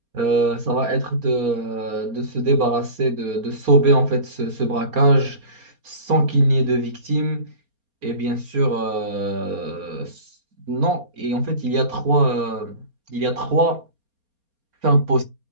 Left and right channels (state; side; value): late; left; 4.3 ms